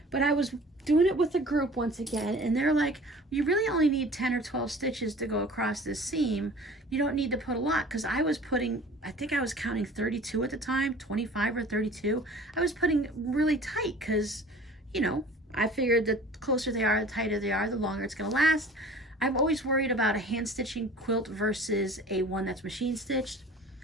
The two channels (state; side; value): normal; both; correlation 0.45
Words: but I was doing it with a group once again, and they're like, you really only need 10 or 12 stitches to go across this seam. You don't need to put a lot, because I was putting, I think I was counting 32 at the time, 25 or 32. I was putting really tight because, you know, I figured the closer they are, the tighter they are, the longer it's going to last. I'm always worried about a hand stitching quilt versus a one that's machine stitched.